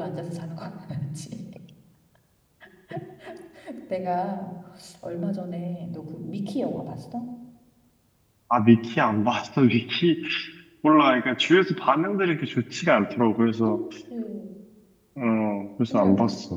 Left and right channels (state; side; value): identical; both; correlation 1.00